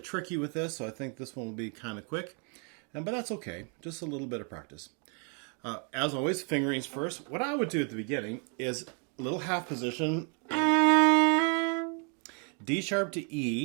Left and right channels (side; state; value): left; quieter; 38.0 dB